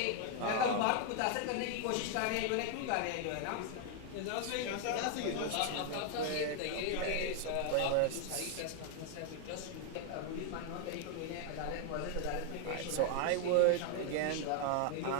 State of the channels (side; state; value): both; different; correlation 0.00